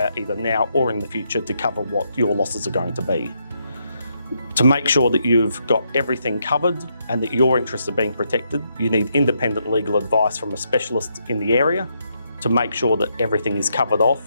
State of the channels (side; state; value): both; inverted; correlation -0.78